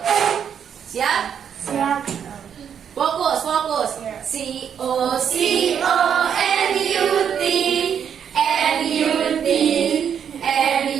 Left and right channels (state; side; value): quieter; left; 8.1 dB